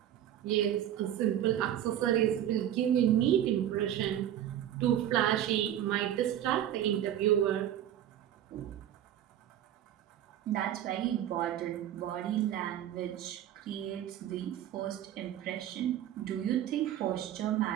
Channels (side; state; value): left; quieter; 11.3 dB